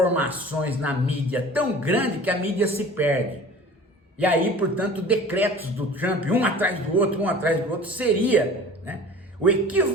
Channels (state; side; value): normal; both; correlation 0.42